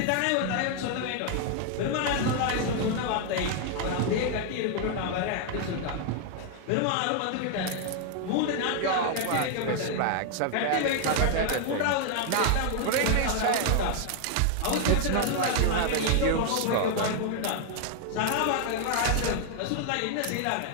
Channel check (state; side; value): different; both; correlation 0.00